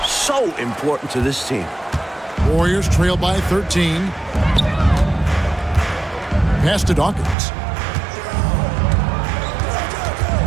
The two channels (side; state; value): left; drops out; at 7.4 s